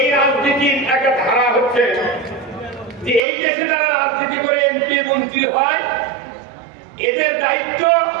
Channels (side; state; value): left; drops out; at 3.2 s